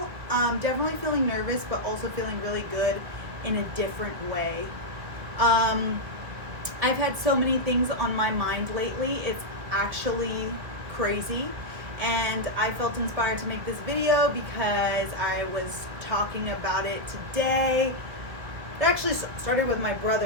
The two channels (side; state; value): left; late; 1.9 ms